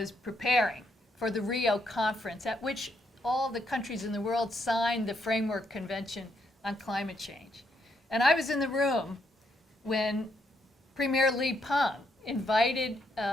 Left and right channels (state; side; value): normal; both; correlation 0.76